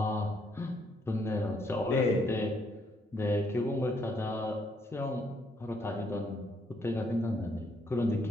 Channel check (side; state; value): both; normal; correlation 0.71